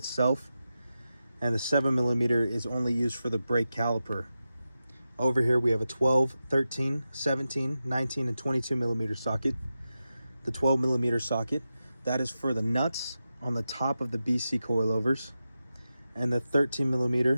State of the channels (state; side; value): inverted; both; correlation -0.91